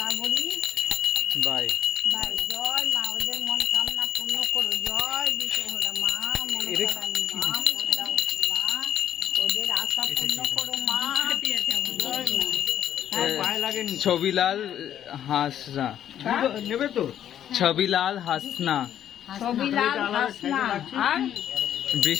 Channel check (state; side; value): quieter; right; 10.4 dB